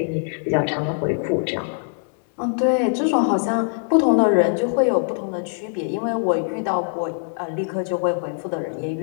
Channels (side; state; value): right; silent; digital silence